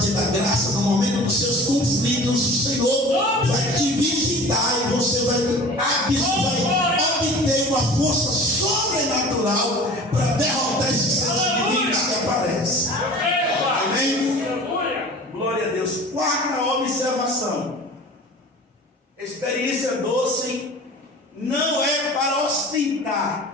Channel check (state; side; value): normal; both; correlation 0.41